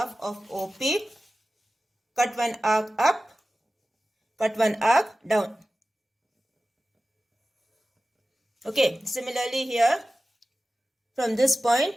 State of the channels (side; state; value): both; normal; correlation 0.95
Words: of OP. Cut one arc up. Cut one arc down. Okay, similarly here, from this point,